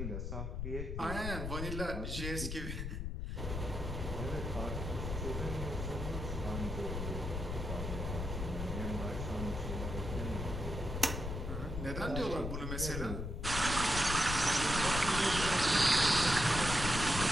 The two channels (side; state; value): left; noise; rumble, 3 dB below the sound